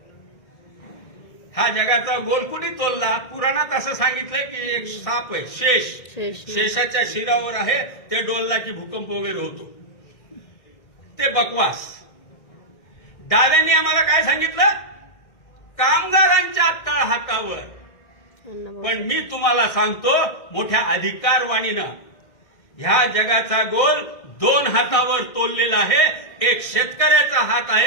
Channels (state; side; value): late; right; 1.7 ms